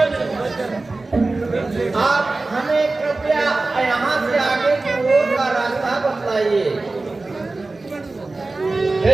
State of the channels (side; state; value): left; quieter; 3.4 dB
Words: आप हमें कृपया यहाँ से आगे की ओर का रास्ता बतलाइए। हे